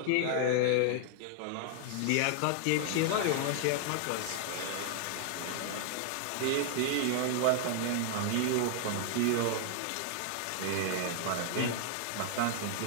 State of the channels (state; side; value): different; both; correlation 0.00